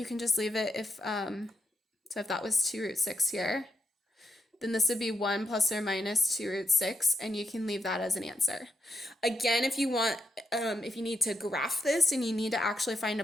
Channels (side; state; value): both; normal; correlation 0.81